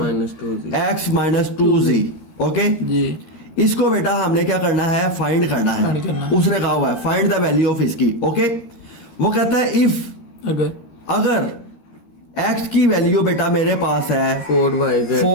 x minus 2z। Okay जी। इसको बेटा हमने क्या करना है, फाइंड करना है। उसने कहा हुआ है फाइंड द वैल्यू ऑफ इसकी। ओके वो कहता है इफ अगर x की वैल्यू बेटा मेरे पास है 4yz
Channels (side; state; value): right; late; 13 ms